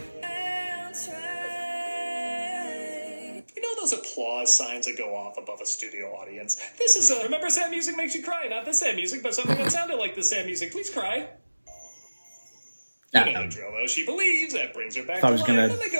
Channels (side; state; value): both; inverted; correlation -1.00